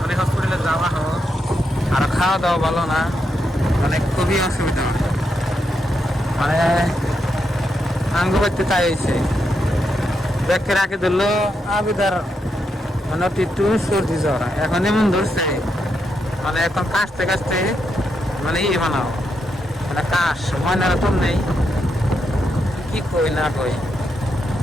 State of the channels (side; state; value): both; normal; correlation 0.82